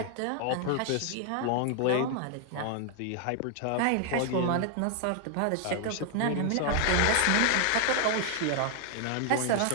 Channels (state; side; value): different; both; correlation 0.00